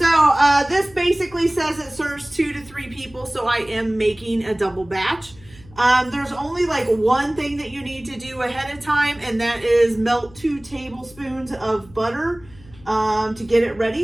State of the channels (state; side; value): noise; left; hum, 24 dB below the sound